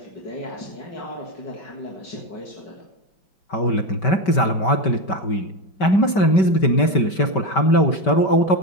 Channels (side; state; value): right; late; 5.2 ms